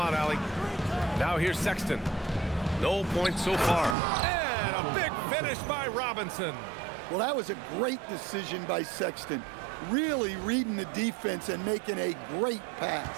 Allie. Now here's Sexton. No points so far. And a big finish by Robinson. Well, that was a great decision by Sexton. Really reading the defense and making a great pass.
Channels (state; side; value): drops out; left; at 4.0 s